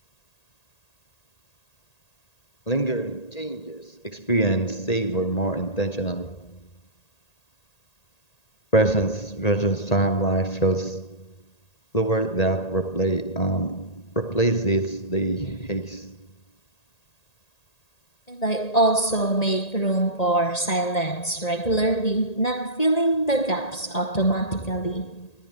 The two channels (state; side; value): late; right; 1.8 ms